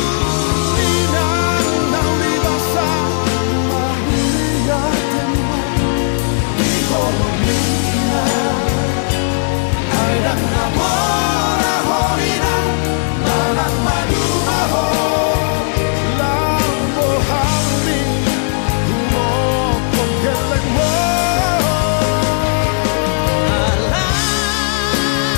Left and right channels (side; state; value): right; silent; digital silence